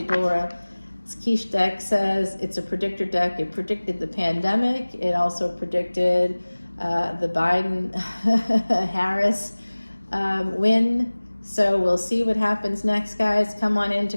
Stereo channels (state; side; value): inverted; both; correlation -1.00